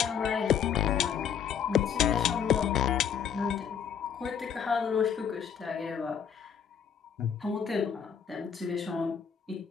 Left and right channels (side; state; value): right; quieter; 7.7 dB